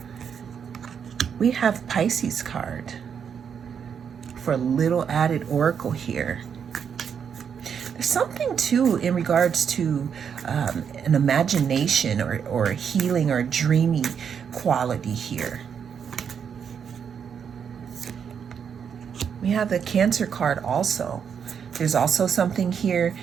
We have Pisces card for a little added oracle here. There's something too in regards to an imagination or a healing or a dreamy quality here. We have the Cancer card also. There's also something here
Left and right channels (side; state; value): left; quieter; 7.3 dB